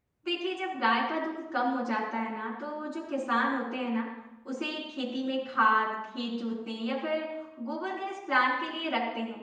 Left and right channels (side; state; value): both; identical; correlation 1.00